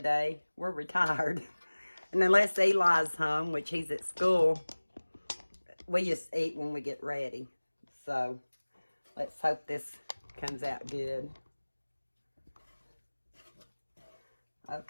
day. We're retired. And unless Eli's home, which he's at school, we just eat when we get ready. So let's hope this comes out good.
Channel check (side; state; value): both; inverted; correlation -1.00